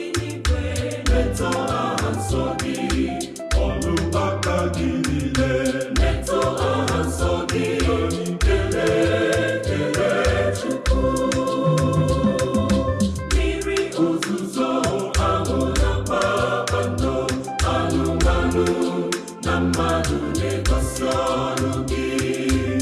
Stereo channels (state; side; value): identical; both; correlation 1.00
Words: n'igwe na-eto aha nsọ gị, ọrụ aka gị niile na-eto aha nsọ gị, kelee Chukwu. Mmiri ozuzo ahụ na kpakpando, anụmanụ na mmadụ na-egosi ọrụ gị.